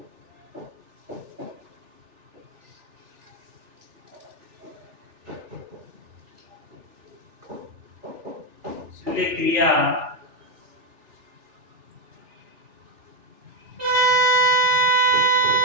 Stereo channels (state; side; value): late; left; 3.4 ms